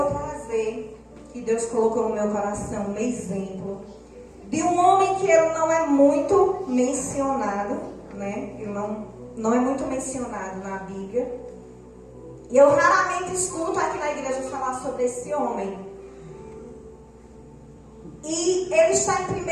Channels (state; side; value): identical; both; correlation 1.00